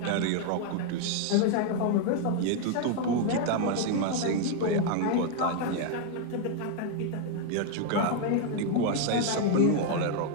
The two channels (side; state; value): both; different; correlation 0.00